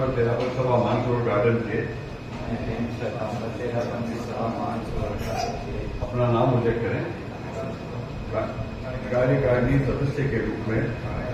तेरापन सभा मानसरोवर गार्डन के अपना नाम उल्लेख करें। कार्यकारिणी सदस्य के रूप में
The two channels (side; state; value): both; identical; correlation 1.00